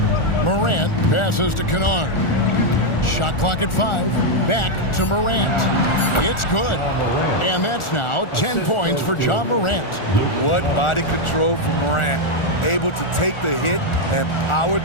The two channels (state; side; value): late; right; 1.4 ms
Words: Morant passes to Kennard. Shot clock at 5. Back to Morant. It's good. And that's now 10 points for John Morant. What body control from Morant. Able to take the hit and power